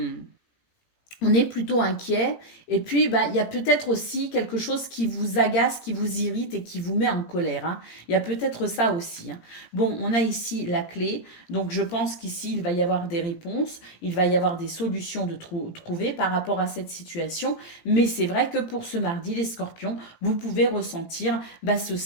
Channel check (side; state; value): right; late; 17 ms